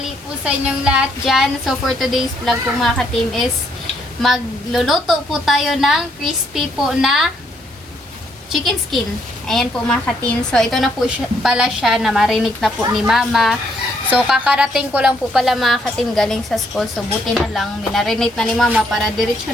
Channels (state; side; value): normal; both; correlation 0.71